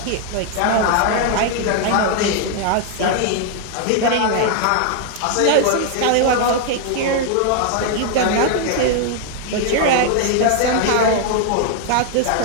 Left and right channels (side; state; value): both; different; correlation 0.00